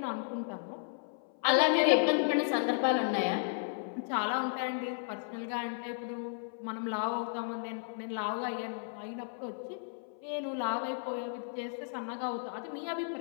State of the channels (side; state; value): right; silent; 55 dB below the other